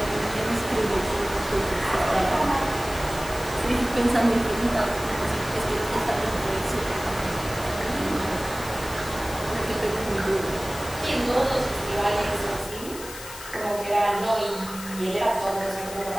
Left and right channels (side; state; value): left; noise; hiss, 13 dB below the sound